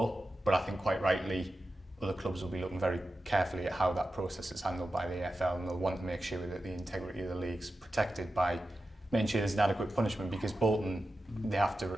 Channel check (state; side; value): normal; both; correlation 0.92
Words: but I think quite rightly other clubs will be looking very carefully at how that process is handled by the AFL, and they'll want to make sure that the integrity of the league's protected by making sure there's an adequate punishment, because Bolton, they have to